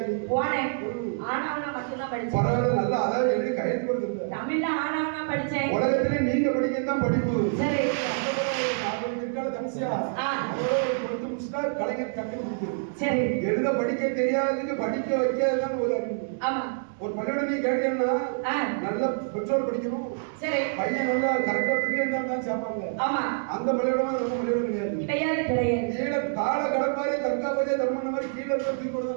போனேன். ஆனாவனா மட்டும்தான் படிச்சேன். பரவாயில்ல, நல்லா அதாவது எழுதி கையெழுத்து கொடுத்துருந்தேன். தமிழ்ல ஆனாவனா படிச்சேன். உலகத்துல நீங்க படிக்கிறது தான் படிப்பு. சரி. கலைஞர் டக்குன்னு கொடுக்குது. சரி. எழுத படிக்க தெரியாததுக்கு படிக்க வைக்கிறதுதான் ஒரு அறிவு. ஆமா. ஒரு பள்ளியோட நீ கேட்டீங்கன்னா நல்ல பெற்றோர் படிக்கணும், சரி. பையன் நல்லா கரெக்டா பிரிண்ட் தான் சேர்ப்பாங்க. ஆமா. அந்த பள்ளியோட நம்ம பள்ளியோட கிடையாது. கிடையாது கிடையாது. கீழே கால கடப்பாரி தற்காப்பதே தர்மம் மாதிரி கீழே இருந்து தூக்கி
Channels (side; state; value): left; silent; digital silence